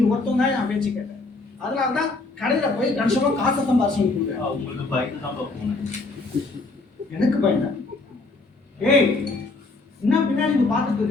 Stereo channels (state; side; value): quieter; right; 3.4 dB